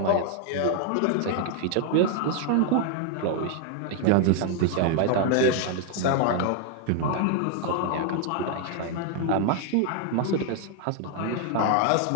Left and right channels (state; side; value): different; both; correlation 0.00